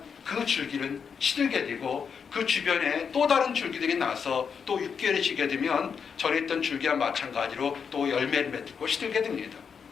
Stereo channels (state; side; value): quieter; right; 6.5 dB